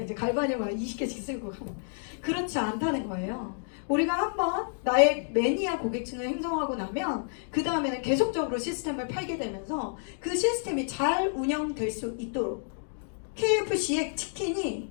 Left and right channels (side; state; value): right; silent; digital silence